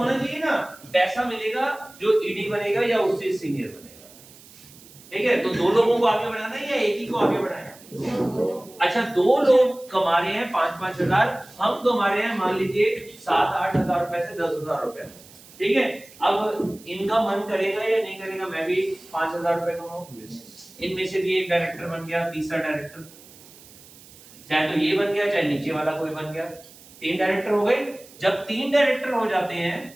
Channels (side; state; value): right; noise; hiss, 22 dB below the sound